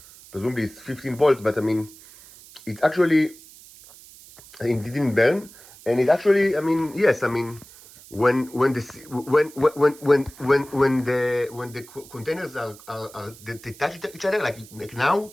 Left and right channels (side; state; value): right; noise; hiss, 21 dB below the sound